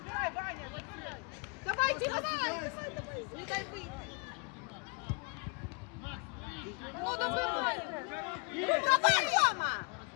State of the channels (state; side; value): quieter; right; 34.2 dB